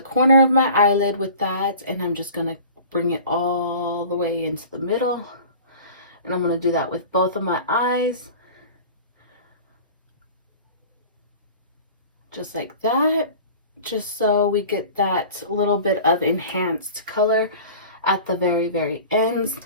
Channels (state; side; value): inverted; both; correlation -0.41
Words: of my eyelid with that, and I'm just going to bring it all the way into the middle, and I'm going to do that with both of my eyes. Just like that, just so we get that little bit of enhanced color at the very, very ends.